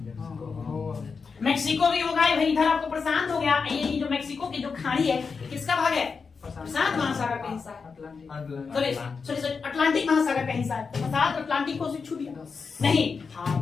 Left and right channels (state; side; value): quieter; right; 5.2 dB